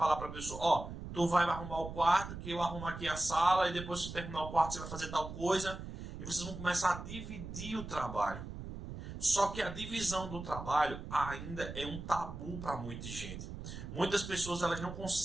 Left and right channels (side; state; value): right; noise; rumble, 9 dB below the sound